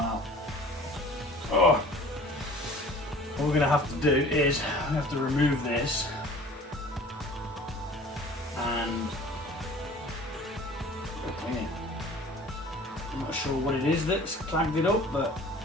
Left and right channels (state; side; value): normal; both; correlation 0.46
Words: Oh. What we're going to have to do is we have to remove this and clean it. I'm not sure what it is that's clagged it up, but